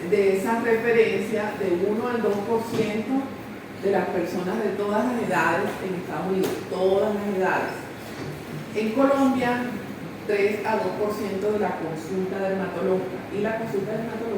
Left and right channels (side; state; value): both; identical; correlation 1.00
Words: de esa referencia de 1 al 2% de las personas de todas las edades en Estados Unidos, todas las edades. En Colombia, 3 a 2% de la consulta dermatológica, y la consulta